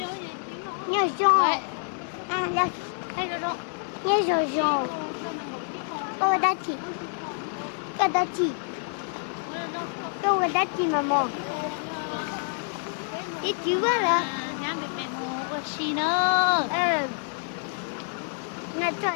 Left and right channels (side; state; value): right; silent; 60 dB below the other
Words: Nhớ Jean. Ah, là. Nhớ Jean. Oh, Dati. Oh, Dati. Oh, Dati, maman. Et tu vois là? Nhà mày về một chi nữa.